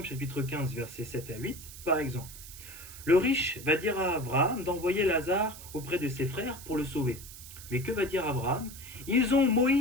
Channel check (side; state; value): right; noise; hiss, 15 dB below the sound